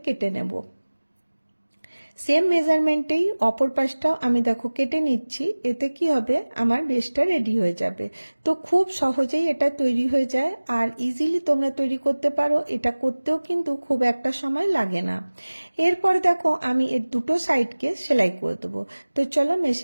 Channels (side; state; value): both; inverted; correlation -1.00